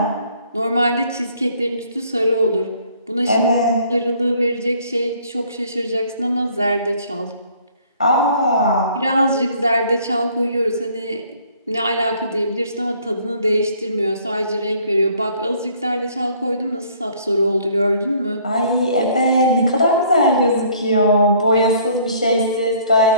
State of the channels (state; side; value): inverted; both; correlation -0.59